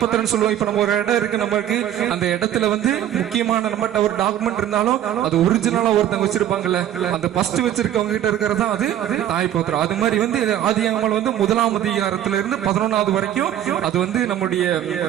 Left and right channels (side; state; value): left; quieter; 11.3 dB